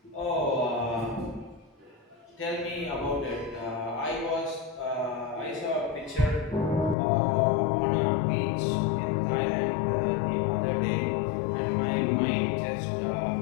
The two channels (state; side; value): drops out; right; at 7.0 s